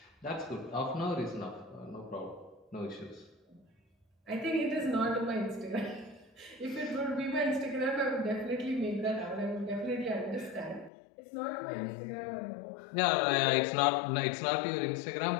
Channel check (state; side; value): drops out; right; at 10.9 s